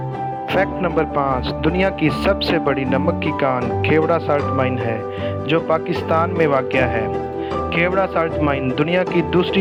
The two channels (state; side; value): identical; both; correlation 1.00